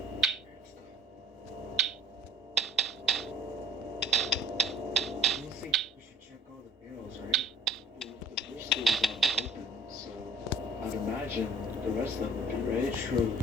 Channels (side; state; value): both; normal; correlation 0.50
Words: I don't think we should check all the barrels, right? The first door was open, so I'd imagine the rest of them would be right.